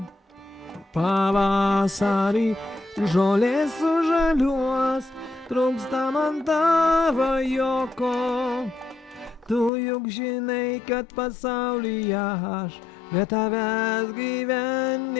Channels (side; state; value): right; drops out; at 9.7 s